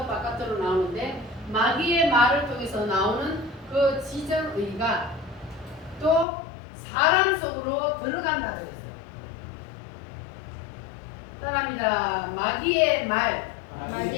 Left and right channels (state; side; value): drops out; right; at 6.2 s